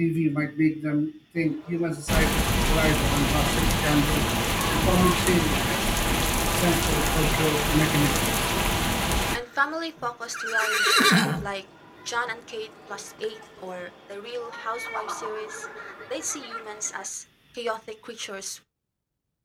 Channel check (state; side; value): identical; both; correlation 1.00